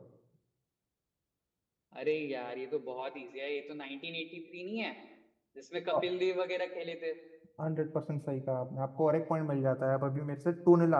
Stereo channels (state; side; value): identical; both; correlation 1.00